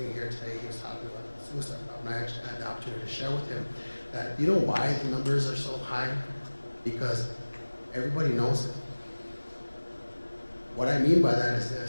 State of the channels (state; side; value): inverted; both; correlation -1.00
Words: here today, he was talking about the suicide problem. I actually had the opportunity to share with him that, why the numbers are so high? Because everybody knows it. What I mean by that